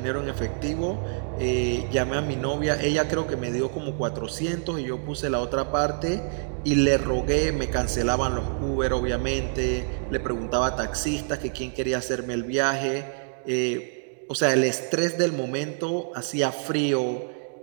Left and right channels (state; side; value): silent; left; digital silence